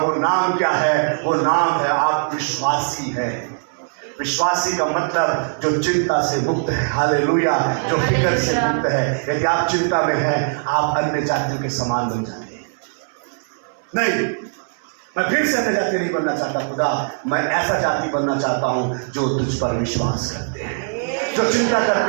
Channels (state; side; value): silent; left; 60 dB below the other